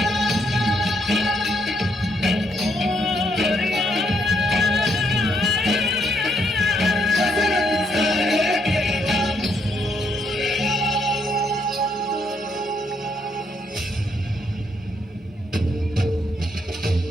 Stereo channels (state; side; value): normal; both; correlation 0.73